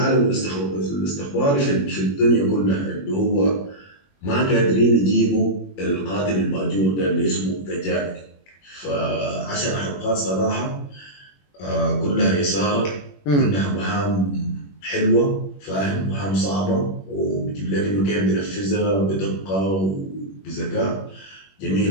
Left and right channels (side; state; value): right; late; 21 ms